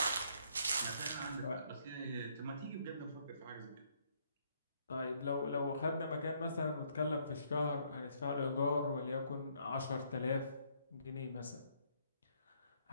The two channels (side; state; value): both; inverted; correlation -0.69